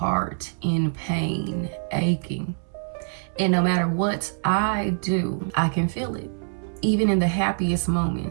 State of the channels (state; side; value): silent; left; 62 dB below the other